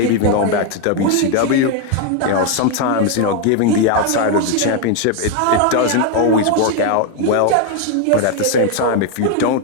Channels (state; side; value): different; both; correlation 0.01